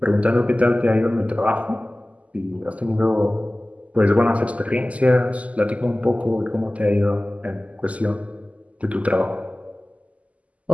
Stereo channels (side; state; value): left; late; 0.069 ms